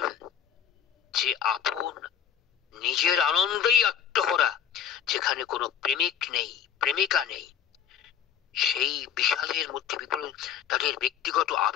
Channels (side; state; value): right; quieter; 8.8 dB